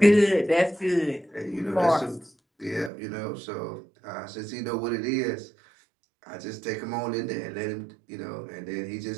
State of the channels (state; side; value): drops out; left; at 2.9 s